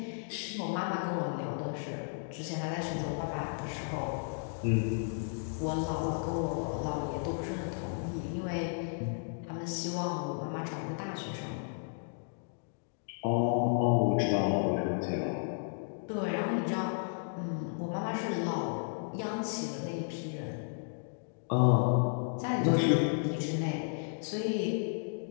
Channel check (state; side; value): silent; right; digital silence